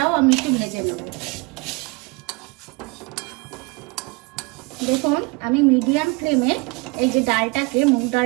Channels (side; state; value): left; quieter; 27.5 dB